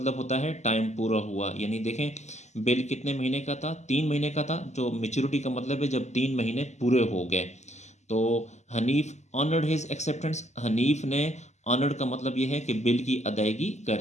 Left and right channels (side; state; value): right; late; 0.33 ms